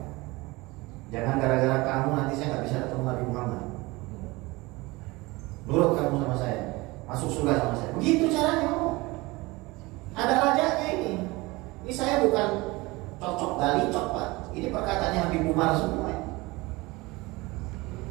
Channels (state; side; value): quieter; left; 22.5 dB